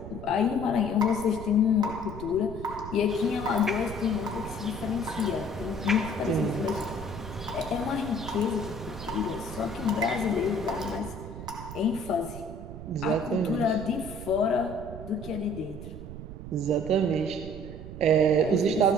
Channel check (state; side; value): noise; right; rumble, 11 dB below the sound